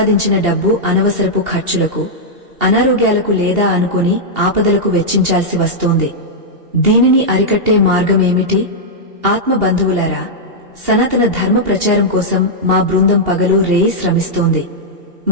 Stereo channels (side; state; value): left; late; 2.8 ms